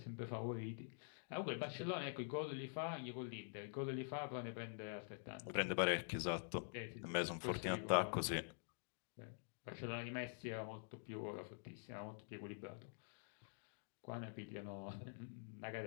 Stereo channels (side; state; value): right; silent; digital silence